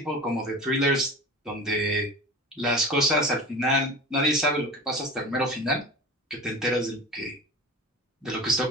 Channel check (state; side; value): normal; both; correlation 0.34